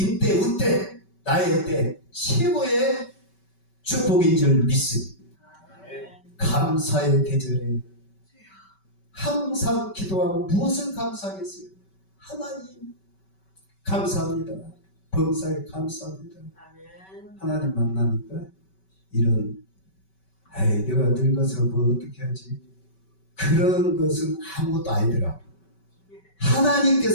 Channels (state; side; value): late; right; 5.2 ms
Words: 운대, 나의 때 최고의 축복인 줄 믿습니다. 감사의 계절에 항상 기도하고 무엇을 감사하겠어요? 하나님 감사합니다. 범사에 감사합니다. 하나님 만나니까 이런 내가 늙어서 뭐 어떻게 하지? 그런 것은 아무것도 아니더라.